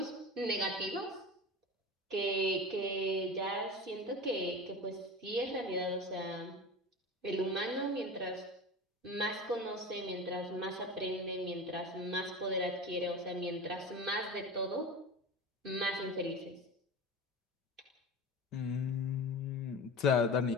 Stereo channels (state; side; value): normal; both; correlation 0.31